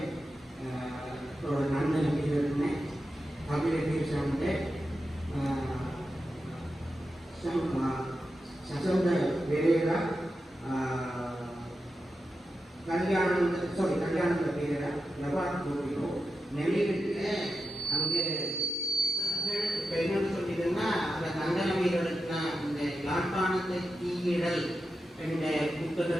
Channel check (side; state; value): both; normal; correlation 0.89